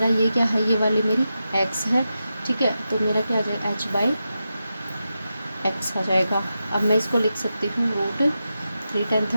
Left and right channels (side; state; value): both; inverted; correlation -0.90